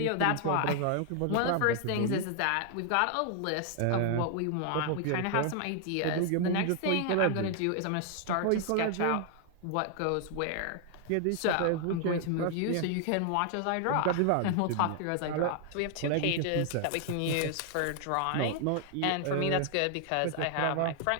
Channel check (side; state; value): both; different; correlation 0.00